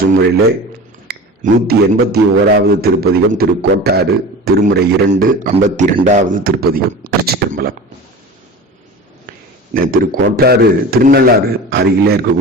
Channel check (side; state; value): both; normal; correlation 0.35